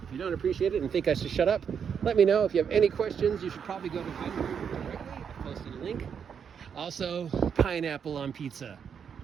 If you don't appreciate it and think I should shut up, let me know. If you have any questions, you should probably go to Venger directly. I posted a link. Also, pineapple on pizza.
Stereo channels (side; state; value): left; quieter; 7.3 dB